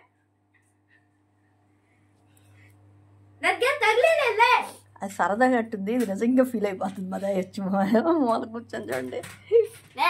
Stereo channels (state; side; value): identical; both; correlation 1.00